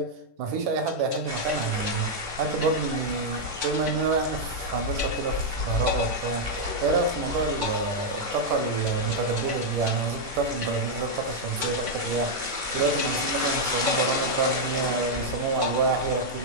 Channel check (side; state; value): left; late; 10 ms